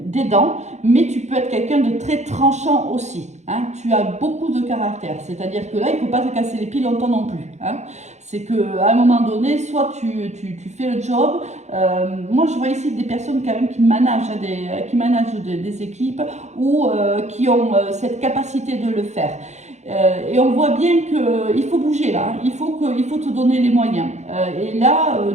d'aidant, mais tu peux être quelqu'un de très tranchant aussi. Hein. Tu as beaucoup de caractère, c'est-à-dire que là, il ne faut pas te casser les pieds longtemps non plus. Hein. C'est qu'à un moment donné, soit tu fais le job. Moi, je vois ici des personnes quand même qui managent des équipes ou qui ont cette capacité de le faire. Et on voit bien qu'il faut bouger là, il faut te donner les moyens. Et là,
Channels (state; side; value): late; left; 0.33 ms